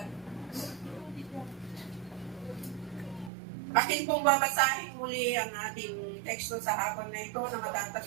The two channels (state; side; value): drops out; left; at 3.3 s